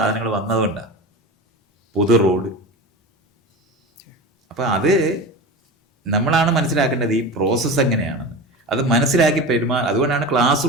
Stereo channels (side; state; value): both; normal; correlation 0.29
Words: വന്നതുകൊണ്ടാണ്. പൊതു റോഡ്. അപ്പം അത് നമ്മളാണ് മനസ്സിലാക്കേണ്ടത് ഈ പ്രോസസ്സ് എങ്ങനെയാണെന്ന്. അത് മനസ്സിലാക്കി അതുകൊണ്ടാണ് ക്ലാസ്